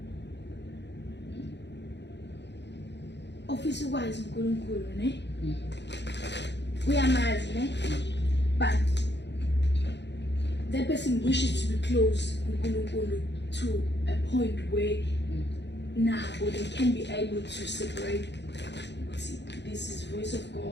office wise uNkulunkulu ne uyamazi ne but that person wishes to be close uNkulunkulu to a point where now they can be able to separate this is voice of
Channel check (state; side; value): late; right; 0.51 ms